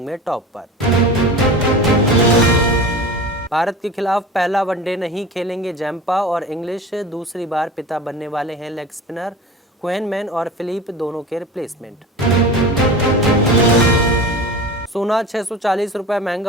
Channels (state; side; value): normal; both; correlation 0.34